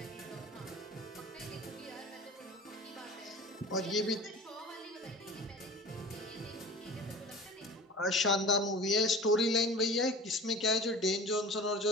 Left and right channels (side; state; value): both; normal; correlation 0.38